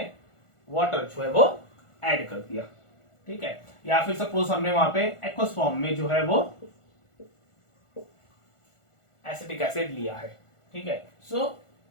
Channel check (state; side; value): late; right; 1.4 ms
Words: वाटर जो है वो ऐड कर दिया, ठीक है, या फिर सपोज हमने वहां पे एक्वस फॉर्म में जो है वो एसिटिक एसिड लिया है। ठीक है, सो